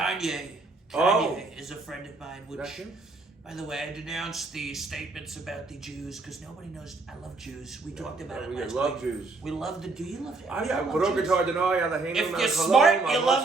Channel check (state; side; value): quieter; left; 3.5 dB